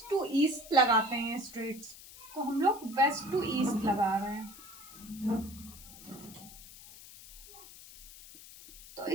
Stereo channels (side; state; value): left; noise; hiss, 17 dB below the sound